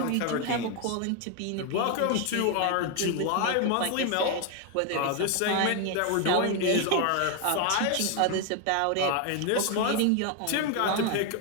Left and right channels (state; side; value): different; both; correlation 0.01